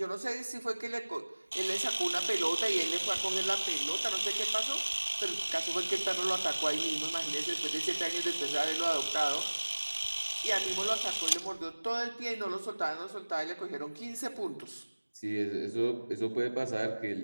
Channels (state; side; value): inverted; both; correlation -1.00